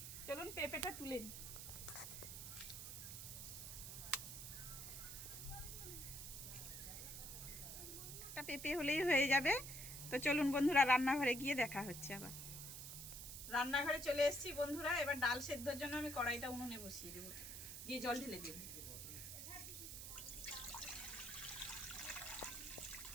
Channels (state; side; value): noise; right; hiss, 8 dB below the sound